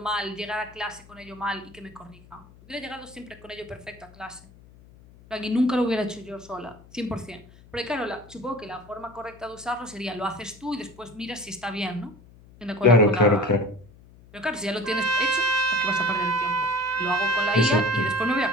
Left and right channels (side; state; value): left; noise; hum, 23 dB below the sound